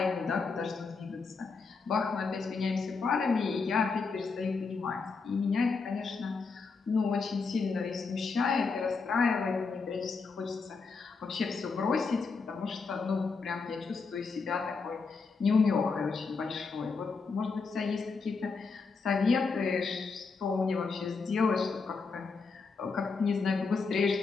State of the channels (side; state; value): right; quieter; 4.7 dB